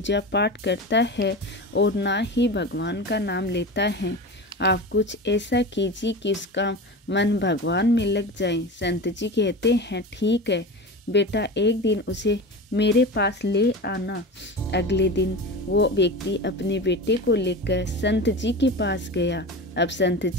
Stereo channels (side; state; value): both; normal; correlation 0.28